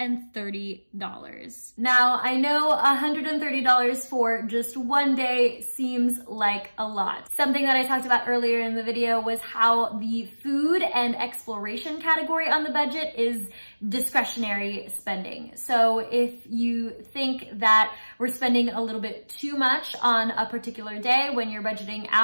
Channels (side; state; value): both; inverted; correlation -1.00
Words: Now, I know $130 for just one day seems like a lot. Something that I talked about earlier in the video was how the food and exploration category on the budget is discretionary spending. So if you think that we're spending a little bit too much on a particular day when you're budgeting